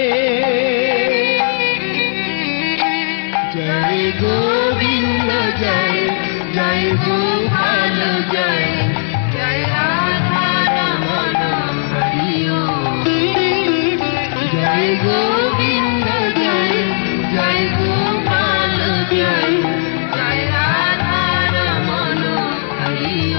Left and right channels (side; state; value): right; silent; 60 dB below the other